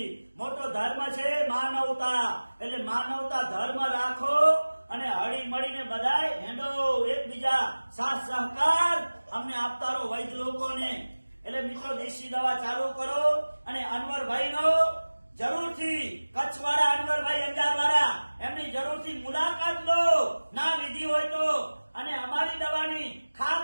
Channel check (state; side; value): inverted; both; correlation -1.00